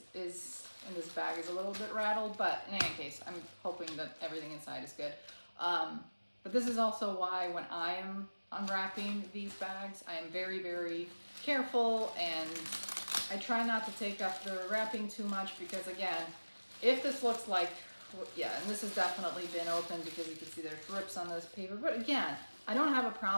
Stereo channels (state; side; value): inverted; both; correlation -1.00